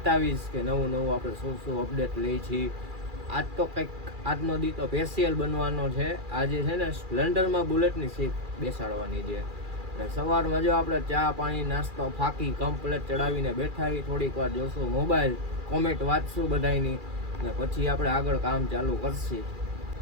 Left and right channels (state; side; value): late; left; 2.4 ms